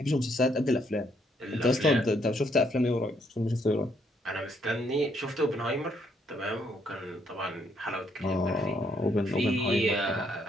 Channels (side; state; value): both; normal; correlation 0.72